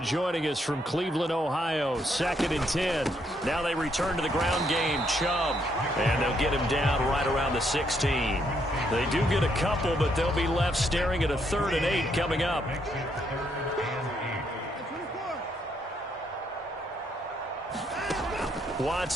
joining us from Cleveland, Ohio. 2nd and 10. Now they return to the ground game. Chubb. And they'll get him down right around the 16. They do get a couple, but they'll be left staring at a 3rd and 8 coming up.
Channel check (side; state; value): both; normal; correlation 0.74